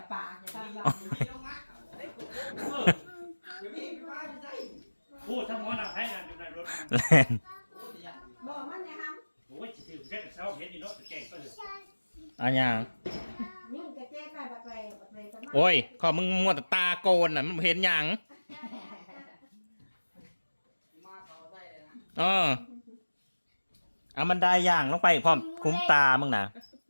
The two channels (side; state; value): both; inverted; correlation -1.00